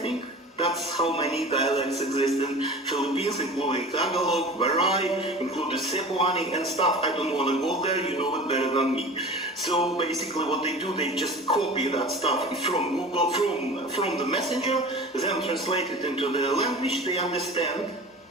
That's how many dialects exist in Philippines, including Tagalog, Baray, including Cebuani and stuff. I don't want to go there, you know it better than me. So basically what they do, they just copy that stuff from Google, from the messenger, then translate it into the language they understand,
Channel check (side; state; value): both; normal; correlation 0.38